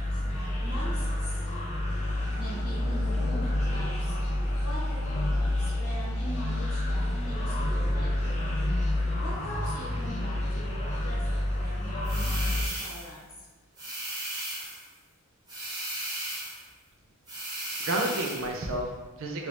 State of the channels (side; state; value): both; normal; correlation 0.79